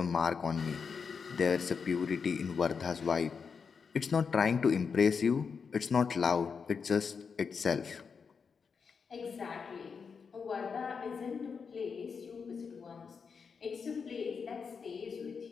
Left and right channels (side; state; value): right; quieter; 5.8 dB